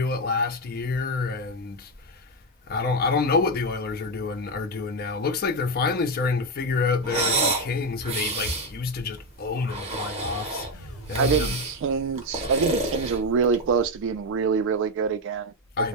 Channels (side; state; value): both; normal; correlation 0.09